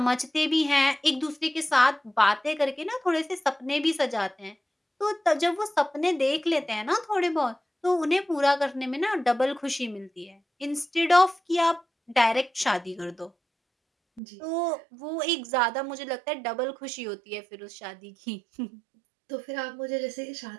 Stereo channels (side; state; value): left; drops out; at 14.2 s